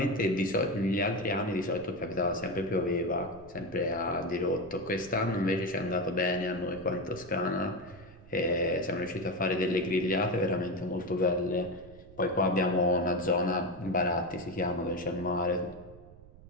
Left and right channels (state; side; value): noise; right; rumble, 20 dB below the sound